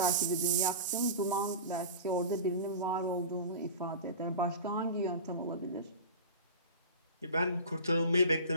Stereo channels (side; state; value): both; inverted; correlation -0.32